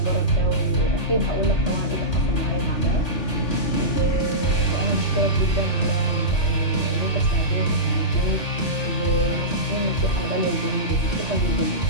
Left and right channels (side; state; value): right; late; 3.4 ms